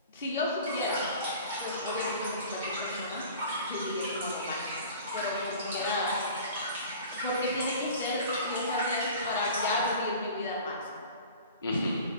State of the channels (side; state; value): both; inverted; correlation -0.42